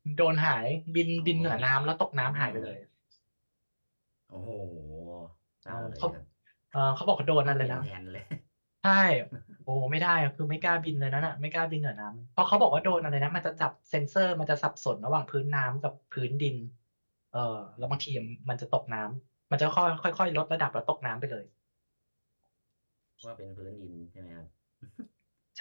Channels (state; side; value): inverted; both; correlation -1.00